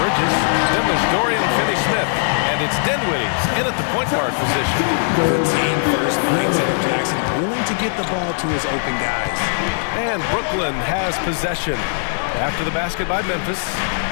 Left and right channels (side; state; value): right; silent; digital silence